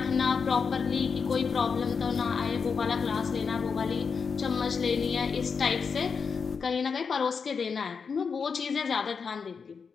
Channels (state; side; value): quieter; right; 5.7 dB